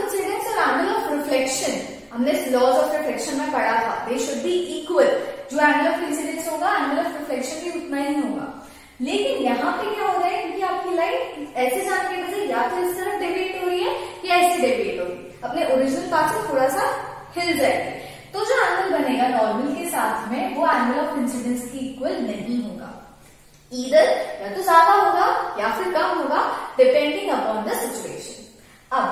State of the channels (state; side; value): identical; both; correlation 1.00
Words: और एंगल ऑफ रिफ्लेक्शन हमने लॉज ऑफ रिफ्लेक्शन में पढ़ा था, दे शुड बी इक्वल। जो एंगल ऑफ इंसिडेंस होगा, एंगल ऑफ रिफ्लेक्शन भी उतना ही होगा। लेकिन यहाँ पे क्या हो रहा है, क्योंकि आपकी लाइट ऐसे जाने की वजह या तो इस तरफ डेविएट हो रही है या ऐसे डेविएट होगी, अपने ओरिजिनल पाथ से थोड़ा सा हिल जाएगी, तो जो एंगल बनेगा नॉर्मल के साथ में वो एंगल ऑफ इंसिडेंस की इक्वल नहीं होगा। ईदर या तो ज्यादा होगा या फिर कम होगा, डिपेंडिंग अपॉन द सिचुएशन।